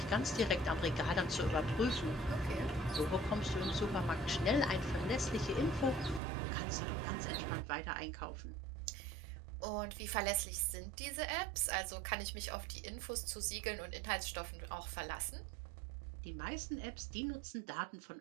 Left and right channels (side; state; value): left; drops out; at 6.2 s